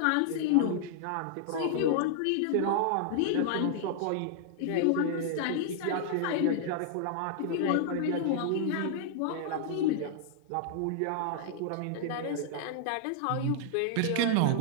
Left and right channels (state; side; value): different; both; correlation -0.01